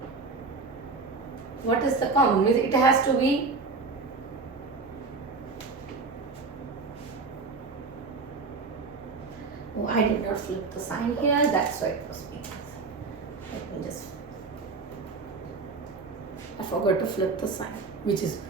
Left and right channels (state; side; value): quieter; left; 4.1 dB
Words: What is the common? Means it has to be oh, I did not flip the sign here, that's why it was being. Let me just, I forgot to flip the sign, which is